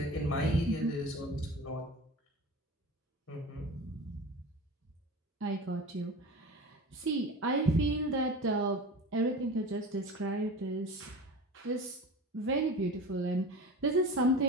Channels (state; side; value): normal; both; correlation 0.34